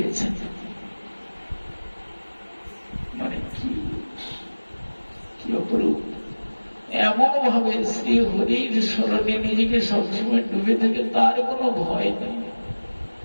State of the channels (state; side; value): inverted; both; correlation -1.00